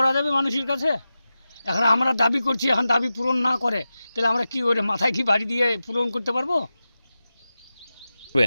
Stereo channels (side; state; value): both; inverted; correlation -0.93